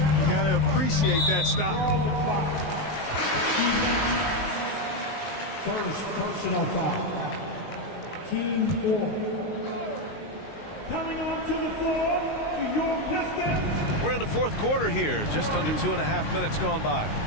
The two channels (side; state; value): right; late; 19 ms